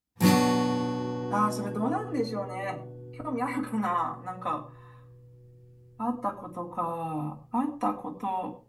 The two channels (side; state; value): both; identical; correlation 1.00